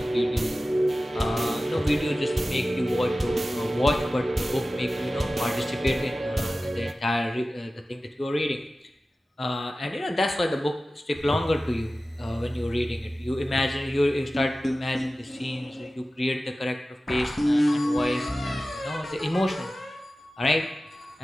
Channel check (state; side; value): normal; both; correlation 0.95